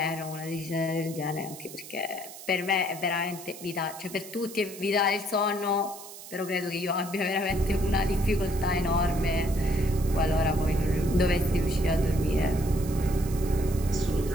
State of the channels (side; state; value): right; noise; hiss, 14 dB below the sound